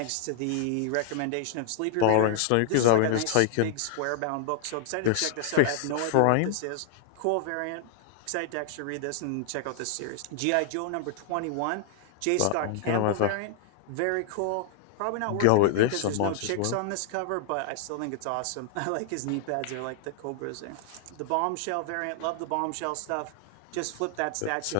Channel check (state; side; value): different; both; correlation 0.00